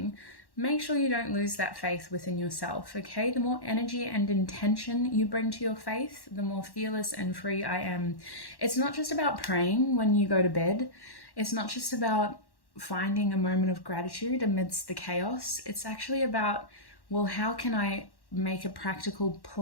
make sure you don't lose that faith within yourself, okay? The more energy and intention you bring to your faith, the more fearless and free I am. It's not just about praying when you go to bed. It's not just about finding a moment of gratitude amidst the chaos. It's actually about, well, how can I make a practical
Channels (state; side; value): late; right; 1.1 ms